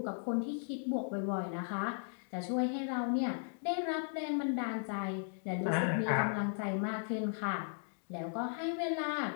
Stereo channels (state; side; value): silent; right; digital silence